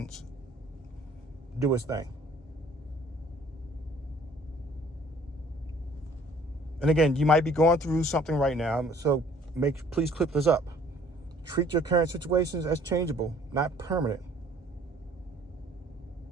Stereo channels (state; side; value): normal; both; correlation 0.56